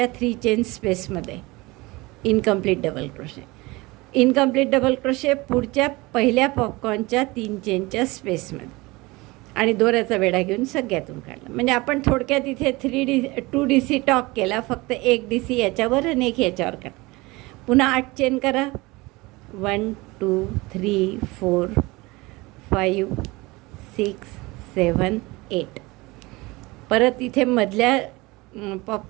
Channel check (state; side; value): quieter; left; 22.5 dB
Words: 3 चेन स्पेसमध्ये incomplete double crochet. Incomplete double crochet पुढच्या पहिल्या पॉपकॉर्नच्या 3 चेनच्या स्पेसमध्ये आणि दोऱ्याचा वेढा घेऊन सगळ्यातून काढला. म्हणजे आपण थोडक्यात इथे 2 DC टॉक केला. फक्त एक DC याच्यावर आणि एक याच्यावर काढा. पुन्हा 8 चेन करा. 1 2 3 4 5 6 7 8. परत इथे मधल्या